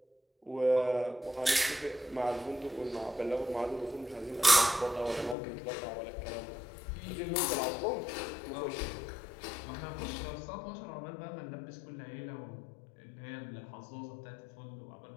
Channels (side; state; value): right; drops out; at 5.4 s